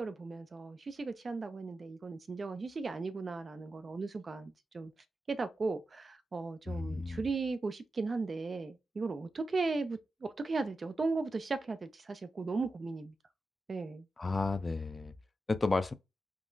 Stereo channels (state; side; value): normal; both; correlation 0.90